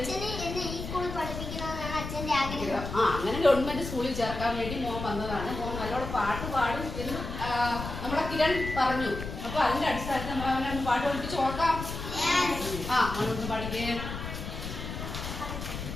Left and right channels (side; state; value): left; noise; rumble, 7 dB below the sound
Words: അങ്ങനെ ഗവൺമെന്റ് സ്കൂളിൽ ചേർക്കാൻ വേണ്ടി മോൻ വന്നതാണ്. മോൻ നല്ലോണം പാട്ട് പാടും എന്ന് നമ്മുടെ കിരൺ പറഞ്ഞു. അപ്പൊ അതിന്റെ അടിസ്ഥാനത്തിൽ നമ്മൾ അവനെ പാട്ട് പഠിപ്പിച്ച് നോക്കാം. മോനൊന്ന് പാടിക്കേ.